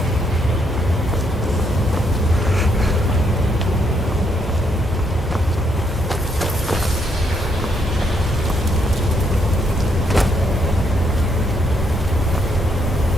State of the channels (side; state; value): both; normal; correlation 0.74